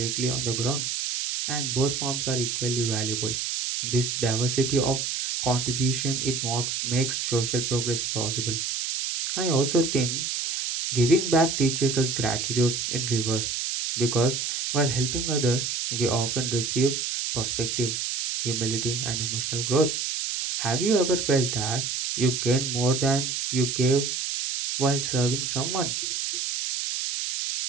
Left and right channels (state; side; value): noise; right; hiss, 2 dB below the sound